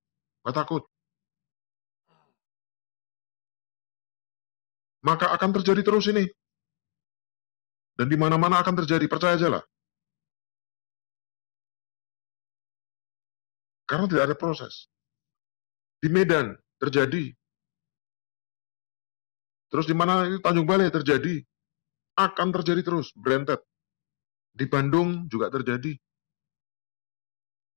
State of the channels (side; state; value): right; silent; 59 dB below the other